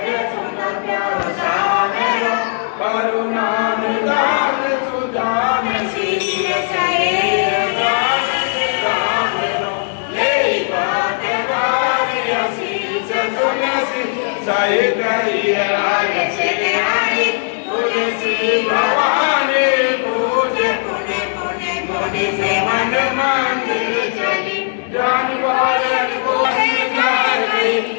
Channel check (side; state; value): right; silent; digital silence